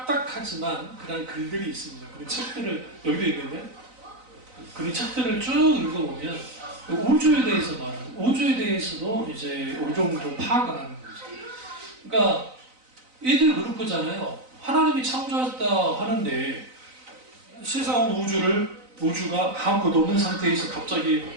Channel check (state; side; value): late; left; 4.0 ms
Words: 그런 글들이 있습니다. 그런 책들을 여기도 있는데 그런 책들을 쭉 읽어보면 우주에 대해서 말하는 우주에 대해서도 이제 어느 정도 파악을 하는 거죠. 그러니까 이들 그런 거잖아요. 하나님이 창조했다 하는데 세상 우주가 아무것도 없는 상태에서 갑자기